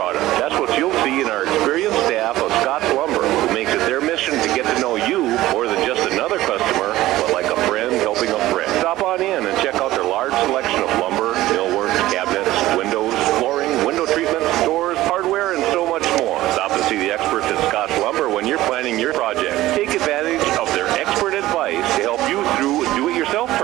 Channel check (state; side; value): quieter; left; 16.1 dB